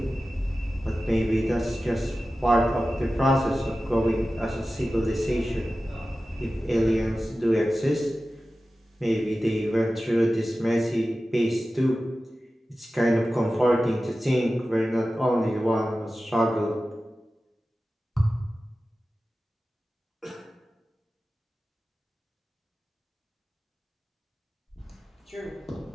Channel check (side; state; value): both; normal; correlation 0.95